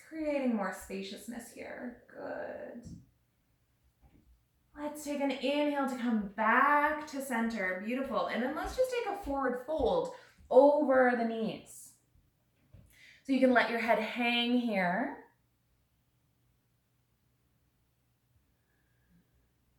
creating more spaciousness here. Good. Let's take an inhale to come back to center. Beautiful. And then let's just take a forward fold over the knees. So you can let your head hang here.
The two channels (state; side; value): identical; both; correlation 1.00